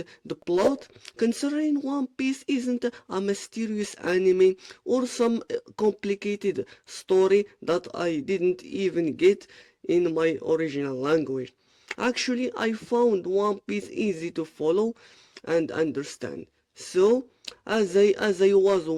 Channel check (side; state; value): both; identical; correlation 1.00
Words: the plot, considering One Piece isn't a mysterious anime or some complicated story that I didn't even get in my original language. Actually, I found One Piece easy to follow and understand. So, as I was